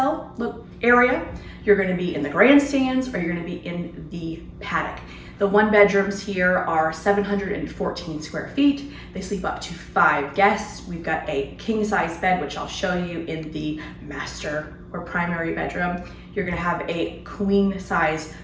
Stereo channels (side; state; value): both; identical; correlation 1.00